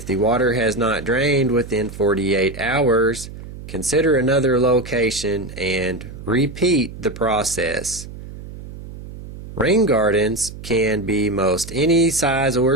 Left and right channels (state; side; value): noise; right; hum, 13 dB below the sound